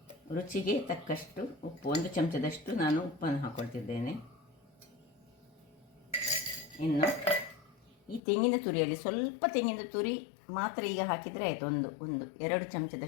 ರುಚಿಗೆ ತಕ್ಕಷ್ಟು ಉಪ್ಪು, 1 ಚಮಚದಷ್ಟು ನಾನು ಉಪ್ಪನ್ನು ಹಾಕ್ಕೊಳ್ತಿದ್ದೇನೆ. ಇನ್ನು ಈ ತೆಂಗಿನ ತುರಿಯಲ್ಲಿ ಸ್ವಲ್ಪ ತೆಂಗಿನ ತುರಿ ಮಾತ್ರ ಈಗ ಹಾಕಿದರೆ ಆಯಿತು. ಒಂದು 2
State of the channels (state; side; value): drops out; right; at 8.2 s